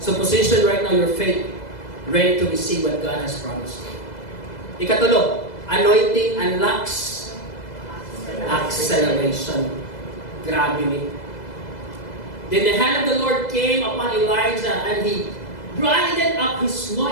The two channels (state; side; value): late; right; 2.0 ms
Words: position right now your faith, ready to receive what God has promised you. Ikatulo, anointing unlocks acceleration. Grabe ni. Then the hand of the Lord came upon Elijah and he grinded up his